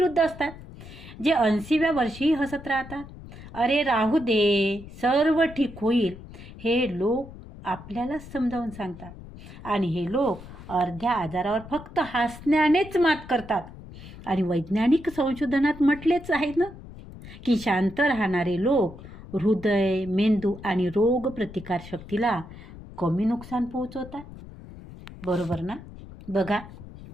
असतात जे 80व्या वर्षी हसत राहतात. अरे राहू दे, सर्व ठीक होईल, हे लोक आपल्याला समजावून सांगतात. आणि हे लोक अर्ध्या आजारावर फक्त हसण्यानेच मात करतात. आणि वैज्ञानिक संशोधनात म्हटलेच आहे ना की शांत राहणारे लोक हृदय, मेंदू आणि रोग प्रतिकार शक्तीला कमी नुकसान पोहोचवतात. बरोबर ना? बघा,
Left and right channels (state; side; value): noise; left; rumble, 16 dB below the sound